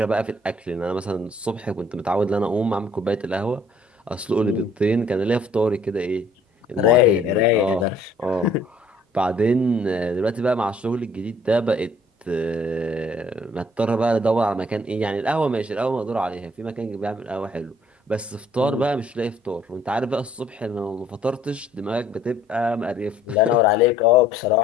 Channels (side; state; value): both; normal; correlation 0.60